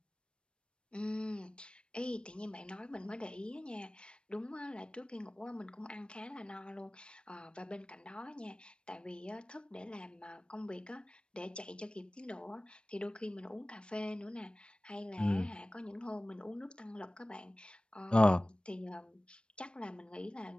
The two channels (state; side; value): late; right; 0.056 ms